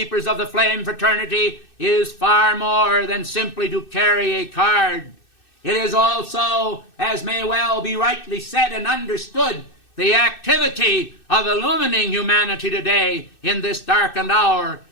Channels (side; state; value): right; late; 2.6 ms